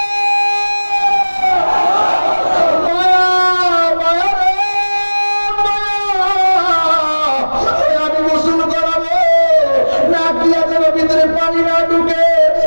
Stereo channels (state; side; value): inverted; both; correlation -1.00